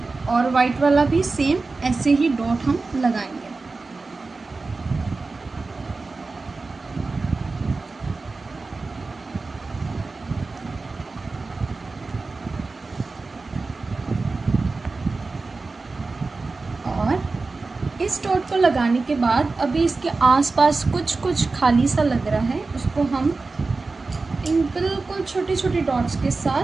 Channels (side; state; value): left; quieter; 3.8 dB